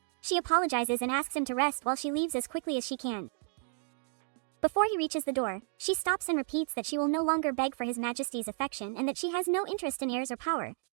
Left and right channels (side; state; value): left; silent; 56 dB below the other